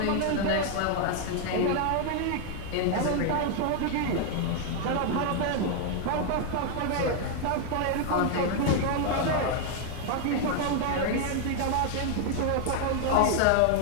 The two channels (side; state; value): both; different; correlation 0.00